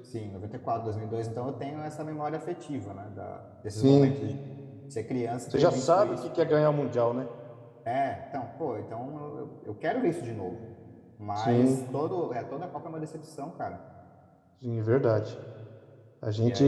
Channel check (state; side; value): identical; both; correlation 1.00